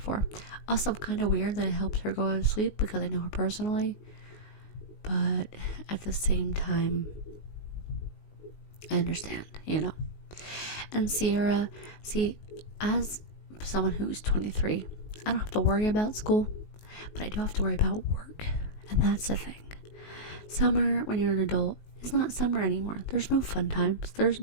Also kind of weird that it helps her go to sleep, because I know her personally, but at the same time, I understand, And Sierra, see, as someone who's 23, I don't have to worry about school, but I do have to worry about work, and that's the thing. Summer, when you're an adult, is not summer anymore. There's no fun times. There's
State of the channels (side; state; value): right; late; 19 ms